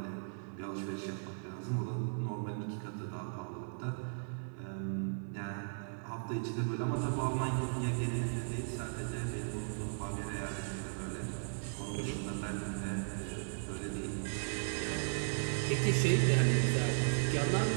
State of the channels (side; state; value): left; silent; 53 dB below the other